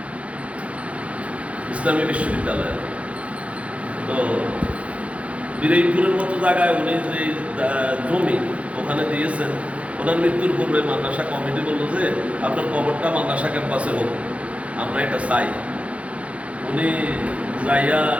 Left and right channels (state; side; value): late; left; 0.064 ms